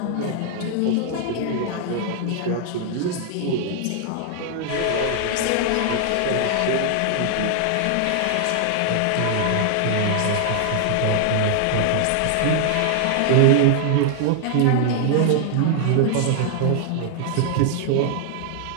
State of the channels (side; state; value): both; different; correlation -0.01